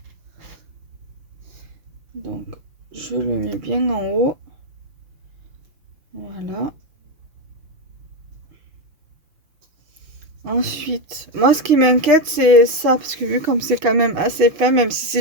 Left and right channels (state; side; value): late; left; 5.9 ms